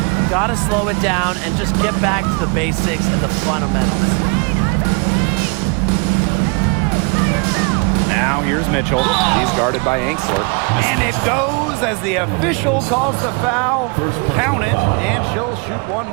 Gotta slow it down and just get back to the basics and the fundamentals. Now here's Mitchell. He's guarded by Angsler. And it goes as the official calls the foul. Count it, and she'll shoot one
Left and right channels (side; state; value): left; quieter; 33.3 dB